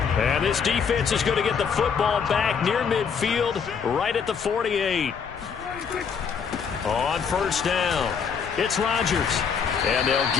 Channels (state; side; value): quieter; right; 6.5 dB